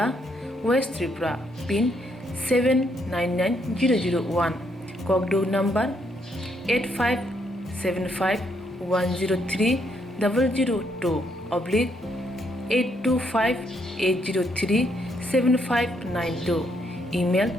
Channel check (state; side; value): normal; both; correlation 0.74